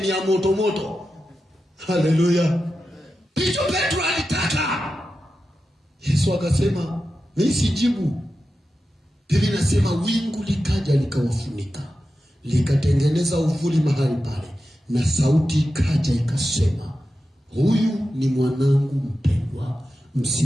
ya moto. Haleluya. Hicho Petro alitaka. Yesu akasema, mimi sijibu. Biblia inasema wingu likaja likawafunika, likatengeneza uvuli mahali pale, na sauti ikaja ikasema, huyu ni mwanangu mpendwa,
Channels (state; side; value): normal; both; correlation 0.91